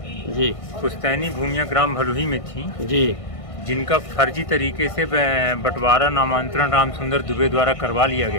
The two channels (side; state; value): right; late; 1.5 ms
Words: जी पुश्तैनी भूमियाँ ग्राम भलुही में थी, जी, जिनका फर्जी तरीके से बंटवारा नामांतरण राम सुंदर दुबे द्वारा करवा लिया